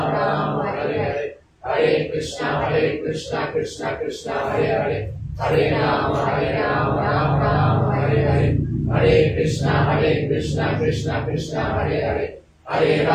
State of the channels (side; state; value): both; identical; correlation 1.00